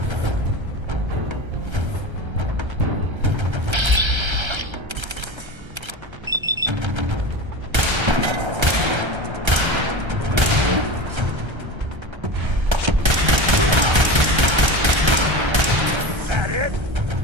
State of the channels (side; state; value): left; late; 1.3 ms